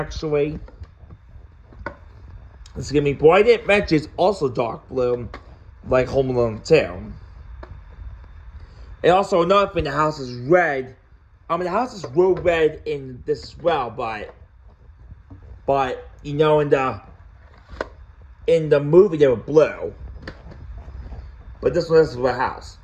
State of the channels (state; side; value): identical; both; correlation 1.00